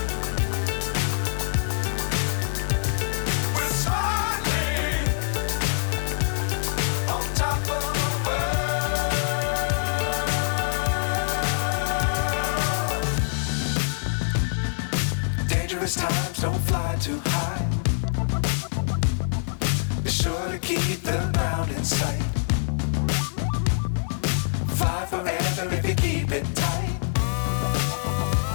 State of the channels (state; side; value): silent; right; 62 dB below the other